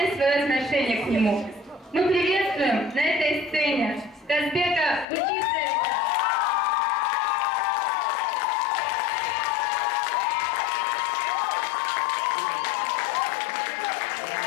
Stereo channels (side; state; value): right; drops out; at 5.1 s